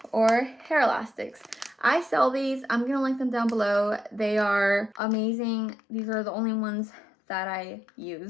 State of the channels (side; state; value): right; drops out; at 5.0 s